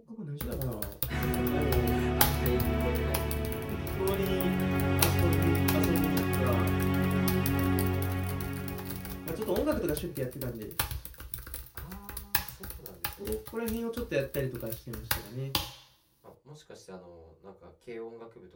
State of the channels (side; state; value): both; identical; correlation 1.00